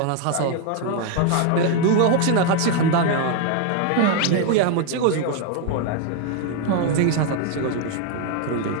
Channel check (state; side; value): different; both; correlation 0.01